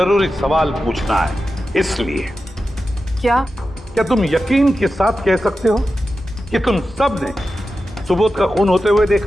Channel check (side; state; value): both; normal; correlation 0.92